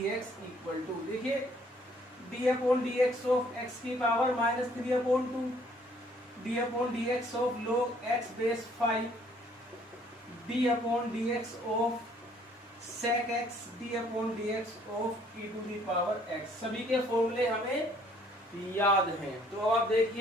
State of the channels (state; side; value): normal; both; correlation 0.62